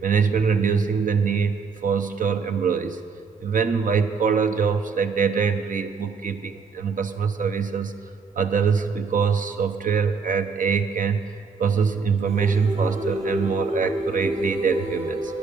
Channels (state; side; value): quieter; left; 5.2 dB